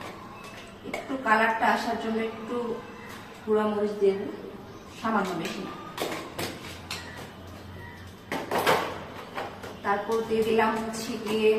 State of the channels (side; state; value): both; identical; correlation 1.00